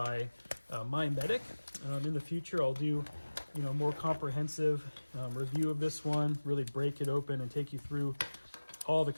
My Medic. In the future, I'll do more comprehensive review of this one, really break it open and take you through all the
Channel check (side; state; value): both; inverted; correlation -1.00